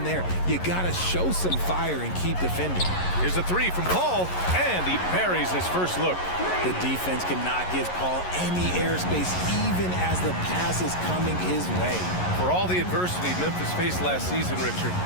there. You gotta show some fire and keep defending. Here's a 3 from Paul, and he buries his first look. The defense cannot give Paul any airspace, even as the pass is coming his way. For all the adversity Memphis faced last season, Richard,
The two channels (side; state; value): right; late; 11 ms